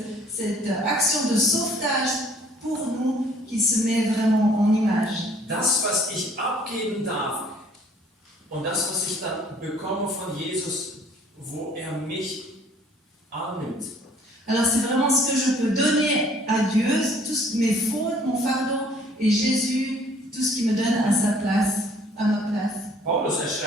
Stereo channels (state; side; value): normal; both; correlation 0.57